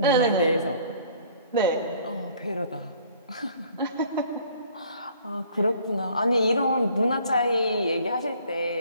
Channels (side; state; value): both; inverted; correlation -0.56